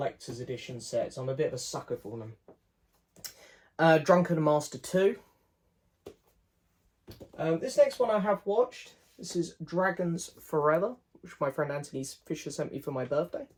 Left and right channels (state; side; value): identical; both; correlation 1.00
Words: edition sets. I'm a bit of a sucker for them. Drunken Master 2. This next one I have watched. This is Dragons Forever, which my friend Anthony Fisher sent me for my birthday.